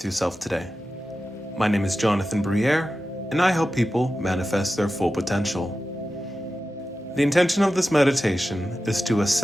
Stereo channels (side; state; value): both; normal; correlation 0.93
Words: yourself today. My name is Jonathan Briere, and I help people manifest their full potential. The intention of this meditation is to